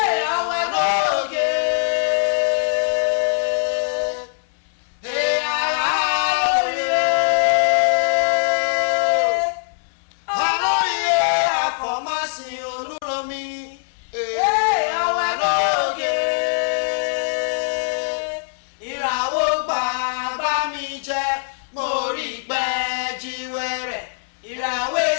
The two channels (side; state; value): right; silent; 65 dB below the other